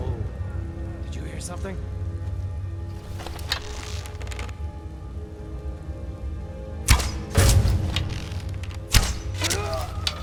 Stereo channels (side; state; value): both; identical; correlation 1.00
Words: did you hear something?